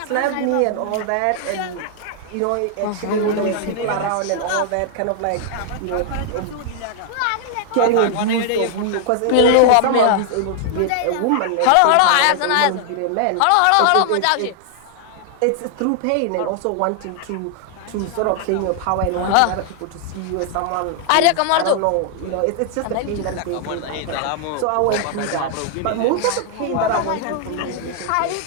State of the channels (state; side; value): different; both; correlation 0.00